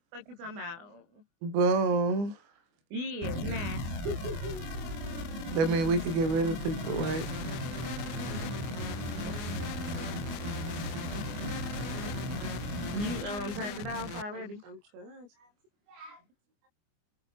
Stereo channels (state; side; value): late; left; 24 ms